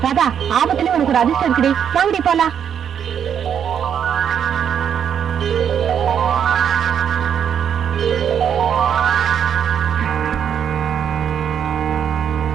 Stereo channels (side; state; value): left; quieter; 8.4 dB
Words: ராதா, ஆபத்துல உனக்கு ஒரு அதிர்ஷ்டம் இருக்குடி. வாங்கடி போலாம்.